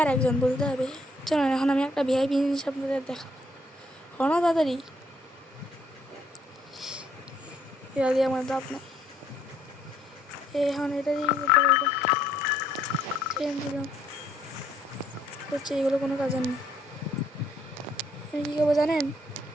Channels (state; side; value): normal; both; correlation 0.67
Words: একজন বলতে হবে। চলো এখন আমি একটা ভিআইপি জিনিস আপনাদের দেখাবো, হলো তাড়াতাড়ি, এটা দিয়ে আমার দাপ নাই। এখন এটা দিয়ে দিলাম হচ্ছে, এগুলো কোনো কাজের নেই। আমি কী করবো জানেন,